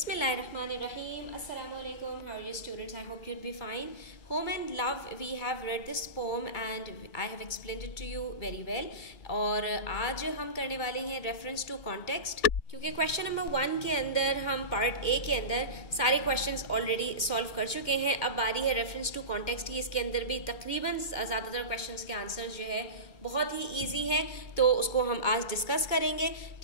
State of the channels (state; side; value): late; right; 2.1 ms